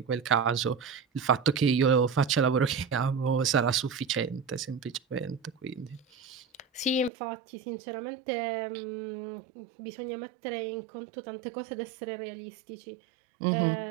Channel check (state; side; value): drops out; left; at 7.1 s